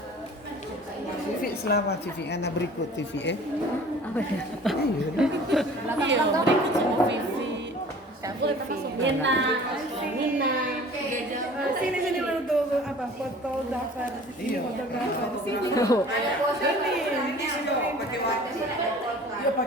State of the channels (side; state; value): both; normal; correlation 0.46